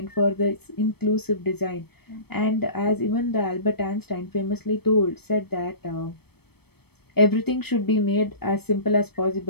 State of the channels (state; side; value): late; right; 0.97 ms